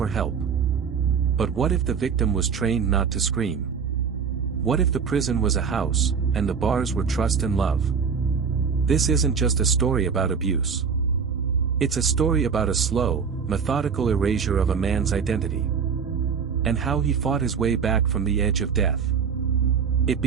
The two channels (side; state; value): left; quieter; 6.3 dB